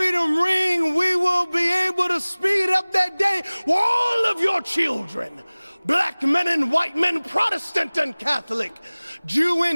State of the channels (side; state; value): both; inverted; correlation -1.00